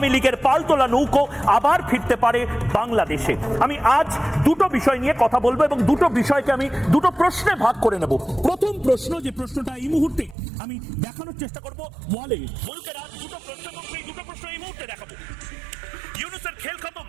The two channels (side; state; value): left; drops out; at 10.4 s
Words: লীগের পালতোলা নৌকো আবার ফিরতে পারে বাংলাদেশে। আমি আজ দুটো বিষয় নিয়ে কথা বলবো এবং দুটো বিষয়কে আমি দুটো প্রশ্নে ভাগ করে নেব। প্রথম প্রশ্ন, যে প্রশ্নটা এই মুহূর্তে আমি দেখানোর চেষ্টা করব ওয়ালে, বলকের আজ দুটো প্রশ্ন এবং সেই দুটো প্রশ্ন এই মুহূর্তে দেখাবো। ইউনূসের খেল খতম,